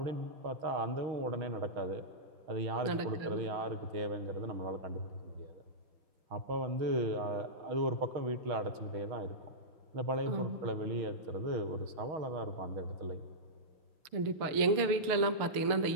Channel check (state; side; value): late; left; 6.7 ms